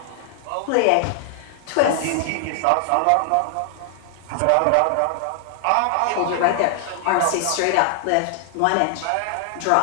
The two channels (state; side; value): different; both; correlation 0.00